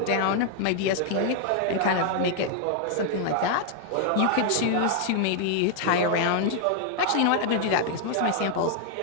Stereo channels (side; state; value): both; different; correlation 0.00